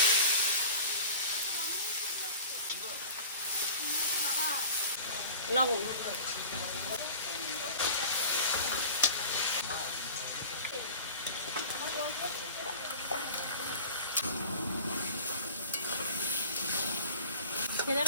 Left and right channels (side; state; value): both; inverted; correlation -0.39